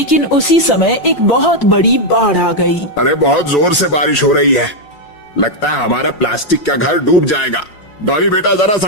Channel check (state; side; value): late; right; 5.5 ms